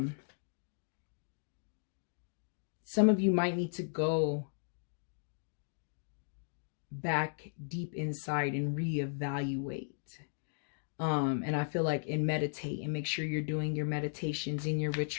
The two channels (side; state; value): right; silent; digital silence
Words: of you might need to go back deep inside and reevaluate. And I feel like, and meditate and make sure you're doing your meditations and your